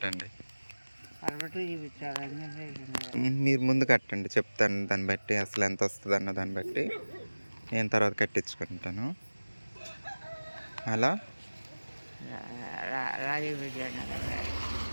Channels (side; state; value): both; inverted; correlation -1.00